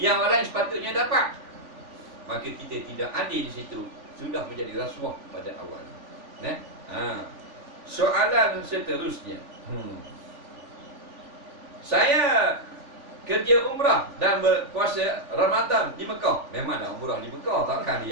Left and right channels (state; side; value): late; left; 3.5 ms